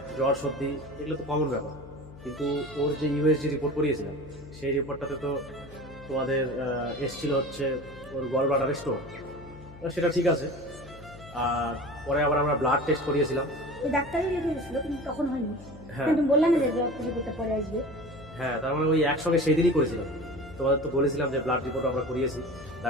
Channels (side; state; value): left; noise; hum, 18 dB below the sound